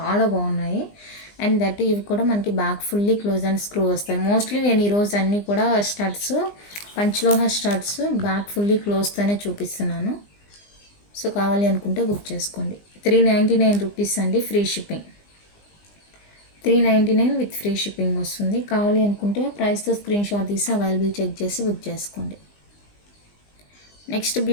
బాగున్నాయి. అండ్ దట్ ఇవి కూడా మనకి back fully close and screw వస్తాయి. మోస్ట్లీ నేను ఈరోజు అన్నీ కూడా స్టడ్స్, పంచలోహ స్టడ్స్ బ్యాక్ ఫుల్లీ క్లోజ్తోనే చూపిస్తున్నాను. సో కావాలి అనుకుంటే బుక్ చేసుకోండి. 399 రూపీస్ అండి free shipping. 399 with free shipping వస్తుంది. కావాలి అనుకుంటే ప్రైస్తో స్క్రీన్ షాట్ తీసి అవైలబుల్ చెక్ చేసి బుక్ చేసుకోండి. నెక్స్ట్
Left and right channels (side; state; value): right; late; 20 ms